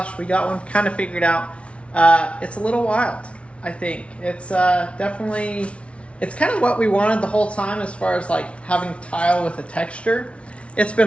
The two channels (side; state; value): right; late; 0.061 ms